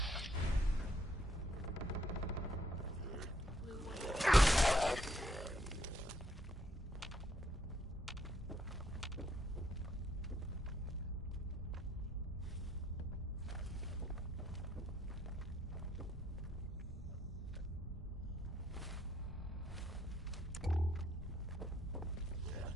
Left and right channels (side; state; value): both; normal; correlation 0.69